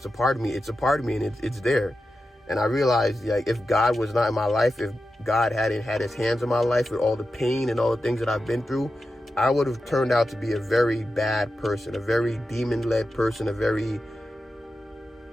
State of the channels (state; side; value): normal; both; correlation 0.91